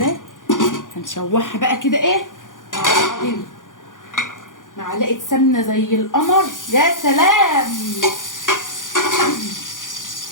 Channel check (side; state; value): right; late; 0.88 ms